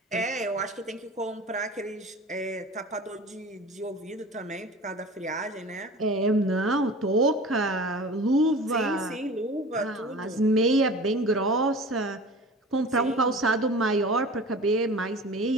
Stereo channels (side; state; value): both; normal; correlation 0.38